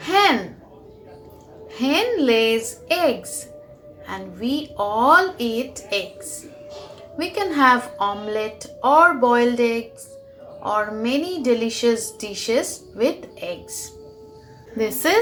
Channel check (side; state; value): both; identical; correlation 1.00